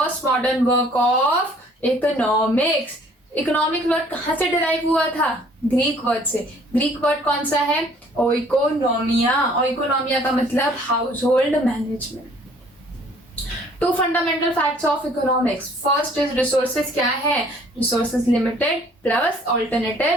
modern work of economics. Economic word कहां से डिराइव हुआ था? ग्रीक वर्ड से। ग्रीक वर्ड कौन सा है? ओइकोनोमिया। ओइकोनोमिया का मतलब household management. Two fundamental facts of economics. First is resources क्या है? Resources limited plus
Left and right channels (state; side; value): normal; both; correlation 0.57